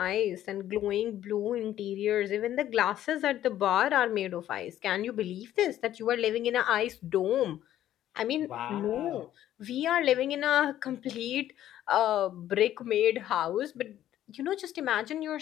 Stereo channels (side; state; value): right; quieter; 12.3 dB